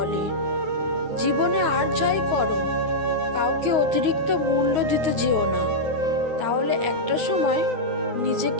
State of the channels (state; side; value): late; left; 9.4 ms